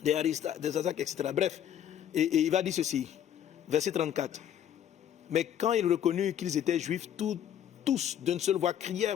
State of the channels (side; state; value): right; quieter; 10.0 dB